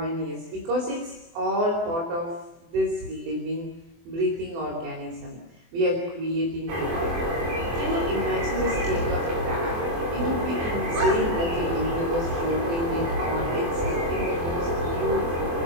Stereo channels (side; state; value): left; late; 24 ms